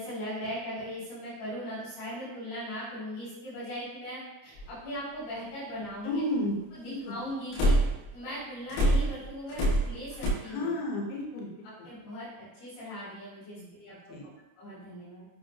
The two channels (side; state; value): right; late; 29 ms